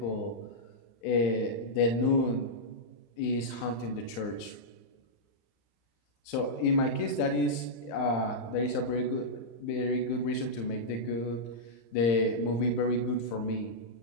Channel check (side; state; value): right; late; 35 ms